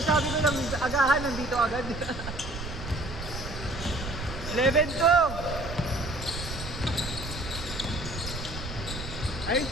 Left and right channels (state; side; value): noise; right; rumble, 8 dB below the sound